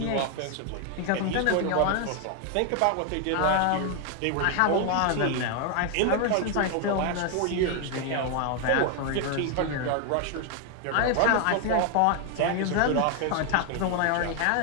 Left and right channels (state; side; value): different; both; correlation 0.00